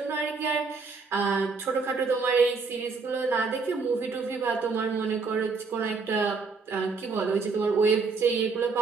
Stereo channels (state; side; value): quieter; left; 4.6 dB